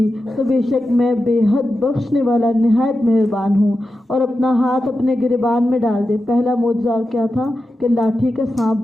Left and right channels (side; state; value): both; normal; correlation 0.91